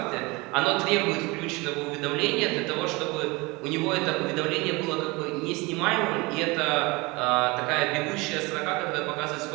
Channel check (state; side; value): quieter; left; 24.5 dB